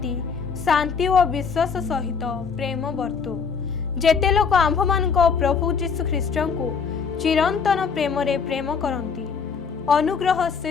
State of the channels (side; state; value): right; quieter; 5.9 dB